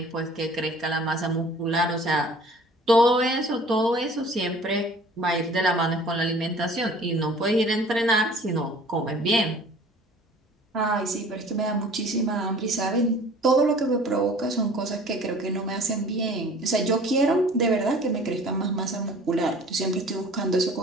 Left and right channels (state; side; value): normal; both; correlation 0.48